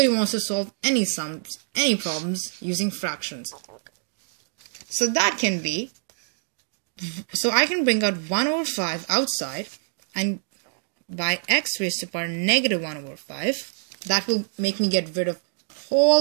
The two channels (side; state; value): left; silent; digital silence